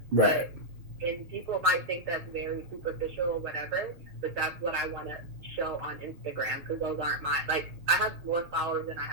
Right. But and people might think that's very superficial or whatever, but that's what I want to show on Instagram because those aren't my like I have more followers than I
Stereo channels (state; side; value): late; left; 6.3 ms